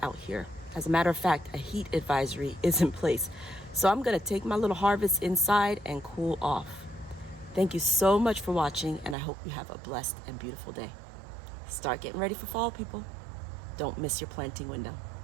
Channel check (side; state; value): left; drops out; at 9.2 s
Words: out here. As a matter of fact, a heat advisory is in place. So I'm gonna take my little harvest inside and cool off. Thank you so much for watching, and I hope you have a blessed and beautiful day. Start getting ready for fall, people. Don't miss your planting window.